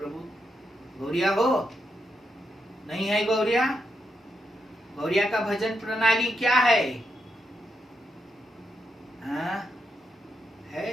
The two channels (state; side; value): normal; both; correlation 0.83